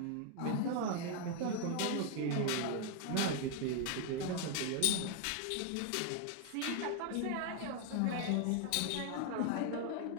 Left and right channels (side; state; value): both; different; correlation 0.00